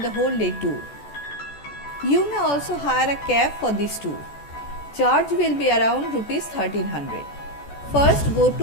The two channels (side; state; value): right; late; 14 ms